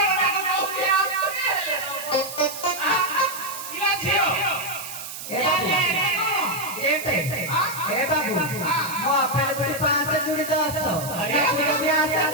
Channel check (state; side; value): noise; right; hiss, 10 dB below the sound